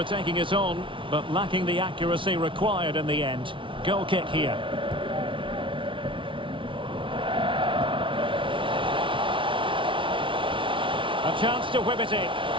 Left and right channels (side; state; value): left; late; 0.25 ms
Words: taking it on, but lacking the accuracy required in the end. Goal kick here. A chance to whip it in.